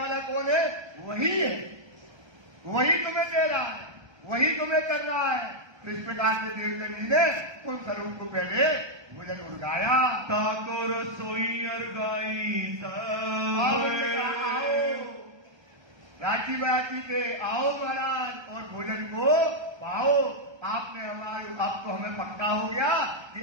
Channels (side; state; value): left; late; 1.3 ms